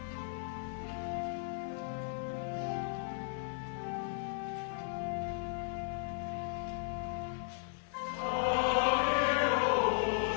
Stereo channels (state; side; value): silent; right; digital silence